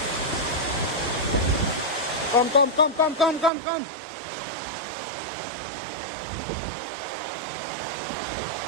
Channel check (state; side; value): drops out; left; at 3.5 s